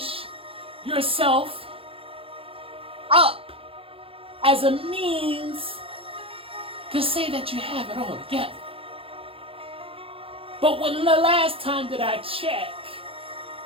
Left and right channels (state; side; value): late; left; 0.27 ms